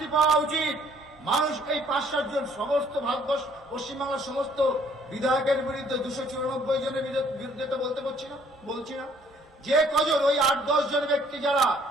পাওয়া উচিত। মানুষ এই 5-7 জন সমস্ত ভারতবর্ষ পশ্চিমবাংলার সমস্ত বিধায়কের বিরুদ্ধে 294 জনের বিরুদ্ধে তো বলছি না, যে কজন ওই 8-10 জন ব্যক্তি যারা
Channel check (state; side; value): normal; both; correlation 0.61